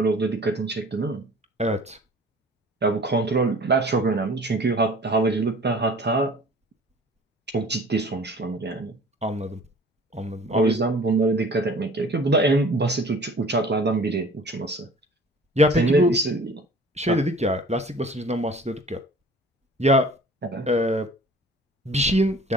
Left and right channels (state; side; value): normal; both; correlation 0.47